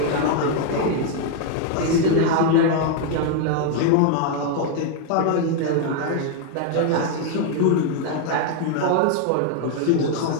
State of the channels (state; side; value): different; both; correlation 0.00